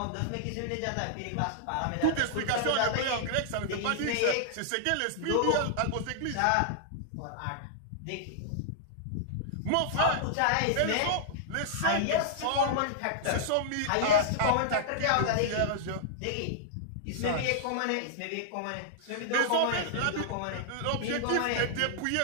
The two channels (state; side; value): different; both; correlation -0.01